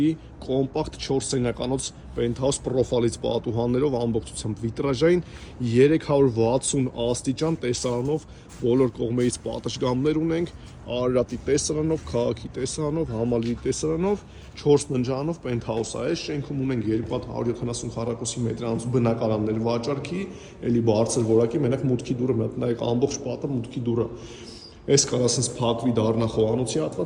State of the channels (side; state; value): both; identical; correlation 1.00